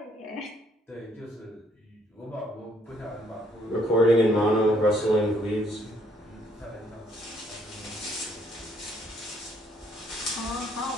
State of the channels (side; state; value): both; normal; correlation 0.67